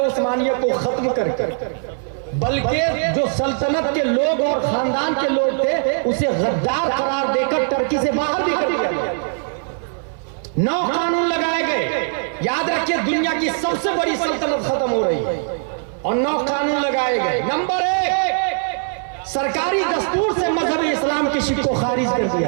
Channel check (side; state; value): left; silent; 65 dB below the other